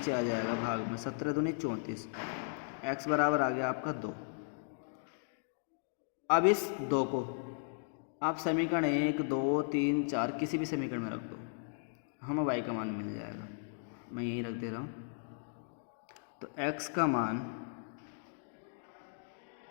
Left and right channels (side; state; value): right; silent; digital silence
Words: आ जाएगा भाग में, 17 दूनी 34, x बराबर आ गया आपका 2। अब इस 2 को आप समीकरण 1 2 3 4 किसी भी समीकरण में रख दो, हमें y का मान मिल जाएगा। मैं यहीं रख दे रहा हूँ। तो x का मान